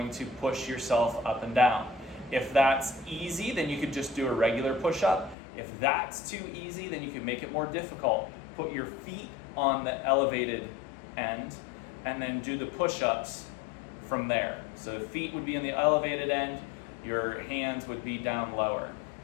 to push yourself up and down. If that's easy, then you could just do a regular push-up. If that's too easy, then you can make it more difficult. Put your feet on the elevated end and then do the push-ups from there. So feet would be in the elevated end, your hands would be down lower.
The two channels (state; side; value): drops out; right; at 5.4 s